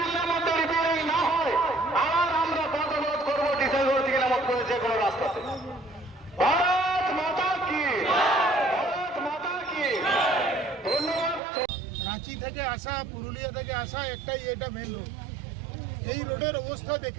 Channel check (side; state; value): left; drops out; at 11.4 s